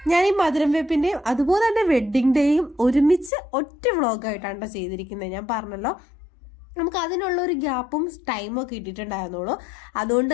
ഞാൻ ഈ മധുരം വെപ്പിൻ്റെയും അതുപോലെ തന്നെ വെഡ്ഡിങ് ഡേയും ഒരുമിച്ച് ഒറ്റ വ്ളോഗായിട്ടാണ് ചെയ്തിരിക്കുന്നത്. ഞാൻ പറഞ്ഞല്ലോ, നമുക്ക് അതിനുള്ള ഒരു ഗ്യാപ്പും ടൈമും ഒക്കെ ഇട്ടിട്ടുണ്ടായിരുന്നുള്ളൂ. അതുകൊണ്ട്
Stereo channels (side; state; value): right; drops out; at 3.3 s